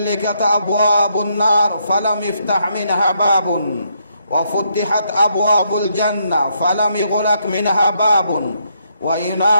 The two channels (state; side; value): inverted; both; correlation -0.76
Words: أبواب النار فلم يفتح منها باب وفتحت أبواب الجنة فلم يغلق منها باب